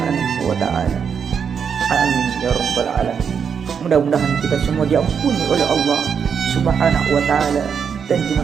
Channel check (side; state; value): left; quieter; 6.9 dB